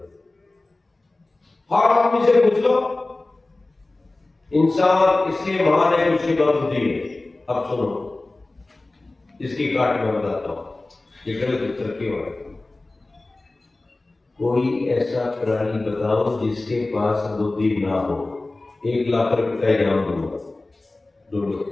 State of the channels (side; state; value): right; quieter; 3.0 dB